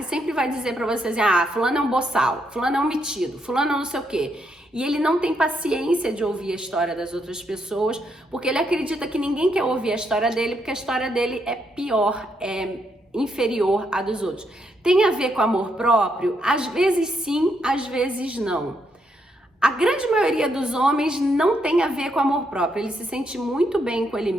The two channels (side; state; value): both; normal; correlation 0.77